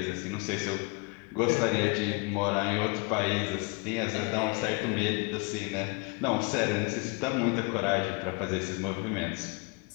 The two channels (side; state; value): right; quieter; 30.8 dB